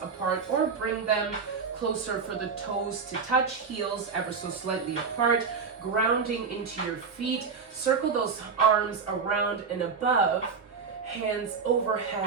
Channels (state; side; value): quieter; left; 5.5 dB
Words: apart or bring them closer for the toes to touch, heels ever so slightly apart, grounding into your feet. Circle those arms around and above, hands